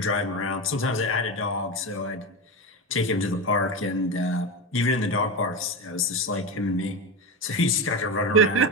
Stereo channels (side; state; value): both; normal; correlation 0.18